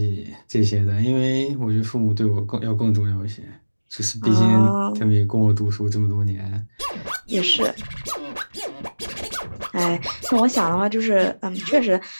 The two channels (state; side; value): inverted; both; correlation -1.00